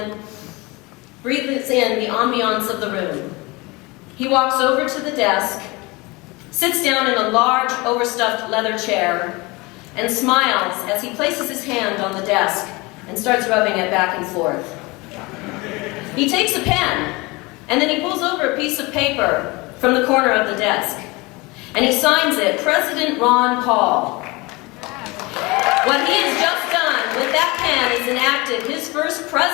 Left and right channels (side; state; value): right; quieter; 24.4 dB